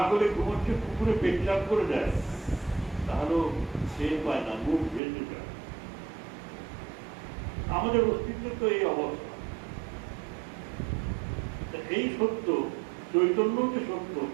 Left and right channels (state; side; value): drops out; left; at 5.0 s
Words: করে ঘুমোচ্ছে, পুকুরে পেটচাপ করে দেয়, তাহলেও টের পায় না, মুখ ভেসে যায়। আমাদের অস্তিত্ব তো এই অবস্থা। এই সত্য, চৈতন্য যে সত্য,